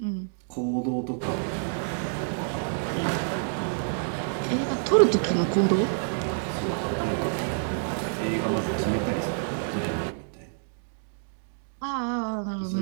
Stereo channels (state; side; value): silent; left; digital silence